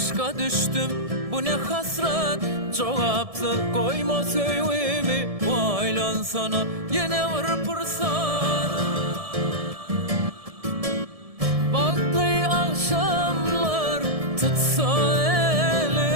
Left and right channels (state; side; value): late; left; 1.7 ms